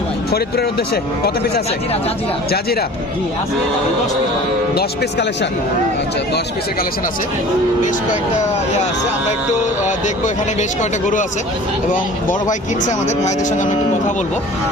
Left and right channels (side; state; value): both; normal; correlation 0.43